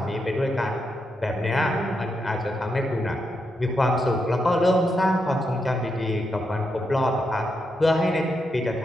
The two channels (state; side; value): normal; both; correlation 0.83